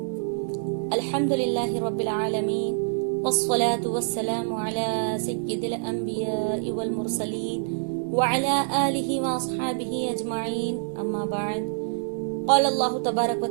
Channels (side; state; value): left; silent; 59 dB below the other